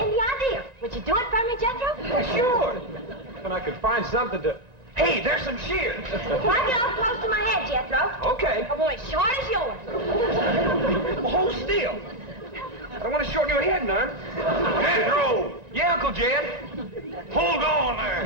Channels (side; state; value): left; late; 1.9 ms